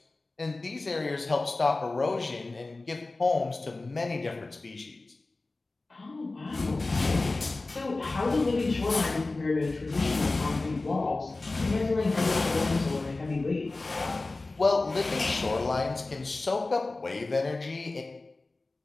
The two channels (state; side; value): quieter; right; 3.3 dB